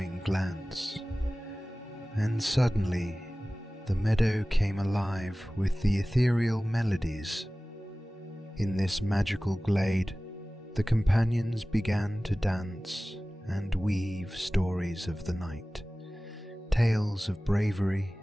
glance, and suddenly the meadow came alive with the ethereal melodies. In this magical glade, the companions began to dance and weave stories of the night, tales of bravery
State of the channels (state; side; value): normal; both; correlation 0.97